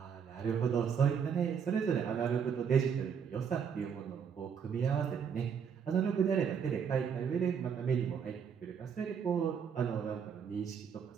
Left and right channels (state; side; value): quieter; left; 7.1 dB